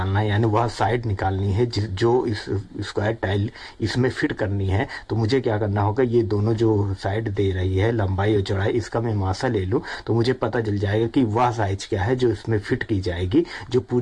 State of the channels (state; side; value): identical; both; correlation 1.00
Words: है, यानी वह साइड निकालनी है जो इस स्क्वायर टाइल इसमें फिट करनी है, तो मुझे क्या करना होगा, ये दोनों जो साइड दे रही है लंबाई और चौड़ाई, इसका मैं मासा ले लूँ तो मुझे पता चल जाएगा कि वह साइज क्या है जो इसमें फिट की जाएगी, जो